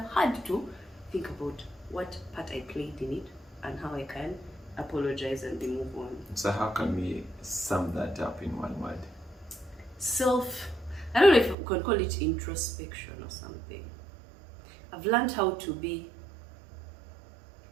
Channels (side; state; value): left; drops out; at 11.6 s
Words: had to think about what part I played in it and how I can apologize and move on. So how can we sum that up in one word? I don't know if we can call it introspection or something. I've learned how to be.